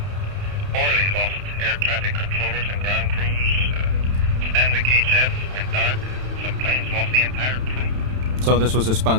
Orly lost air traffic controllers and ground crews. Stanwick HF went dark. Some planes lost the entire crew. So this was a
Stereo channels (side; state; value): left; late; 31 ms